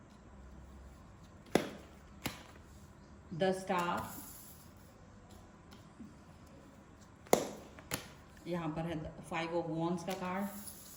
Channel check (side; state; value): both; identical; correlation 1.00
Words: द स्टार, यहाँ पर है 5 ऑफ वॉन्ड्स का कार्ड।